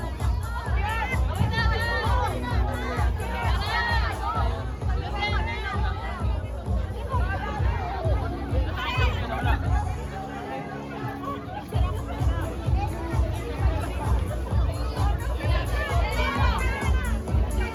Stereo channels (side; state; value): both; identical; correlation 1.00